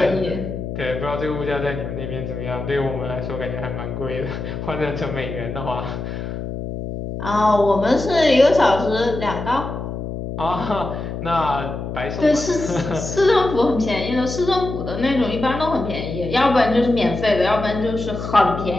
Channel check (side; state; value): left; noise; hum, 6 dB below the sound